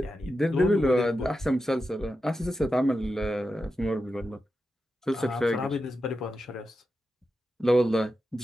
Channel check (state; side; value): normal; both; correlation 0.89